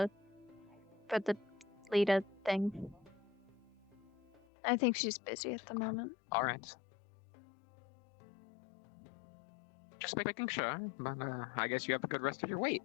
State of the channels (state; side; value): drops out; right; at 4.4 s